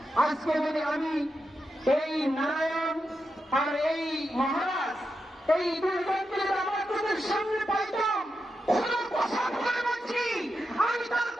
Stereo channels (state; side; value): normal; both; correlation 0.87